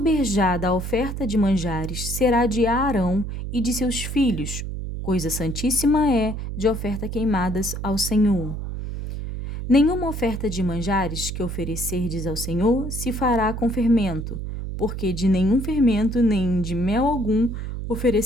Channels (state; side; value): noise; right; hum, 6 dB below the sound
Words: da oferta de manjares será de Arão e de seus filhos, coisa santíssima é de oferta queimadas ao Senhor. Nenhuma oferta de manjares que oferecerdes ao Senhor se fará com fermento, porque de nenhum fermento nem de mel algum